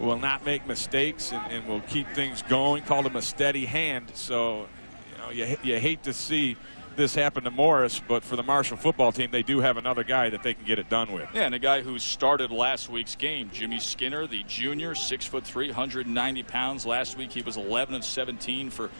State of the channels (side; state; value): both; inverted; correlation -1.00